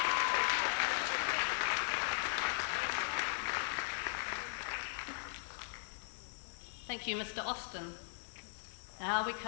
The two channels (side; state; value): right; silent; 52 dB below the other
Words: Thank you, Mr. Austin. Now we